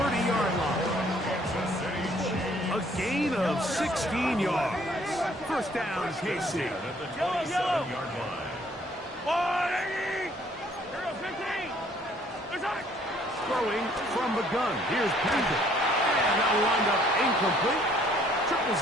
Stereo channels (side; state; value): both; normal; correlation 0.62